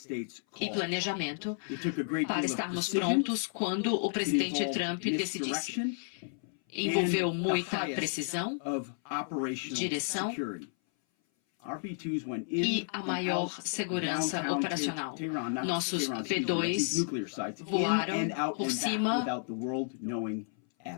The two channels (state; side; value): silent; right; 56 dB below the other